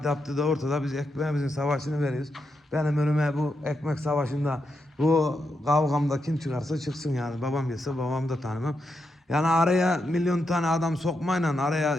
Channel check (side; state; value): both; normal; correlation 0.84